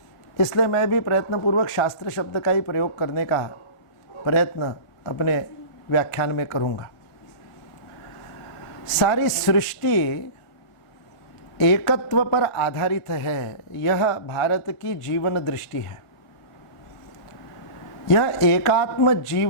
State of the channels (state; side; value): late; right; 1.5 ms